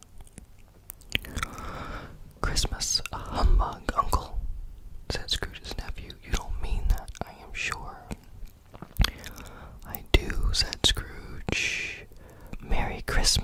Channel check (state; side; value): identical; both; correlation 1.00